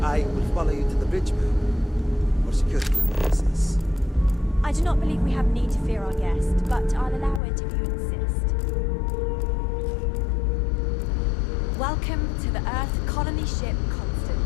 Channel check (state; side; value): drops out; right; at 7.4 s